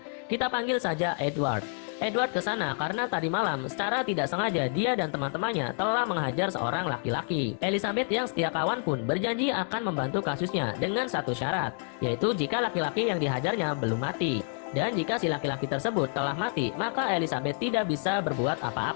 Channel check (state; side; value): silent; right; 55 dB below the other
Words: Kita panggil saja Edward. Edward ke sana karena tadi malam secara tidak sengaja dia dan teman-temannya telah menghajar seorang laki-laki. Elizabeth yang setia kawan pun berjanji akan membantu kasusnya dengan satu syarat, yaitu jika laki-laki yang dihajarnya belum mati. Dan jika si laki-laki tersebut telah mati, maka Elizabeth tidak bisa berbuat